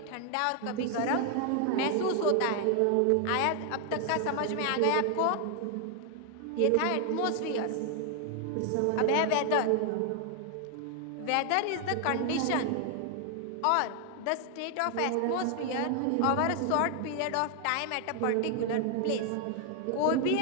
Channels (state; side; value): different; both; correlation 0.00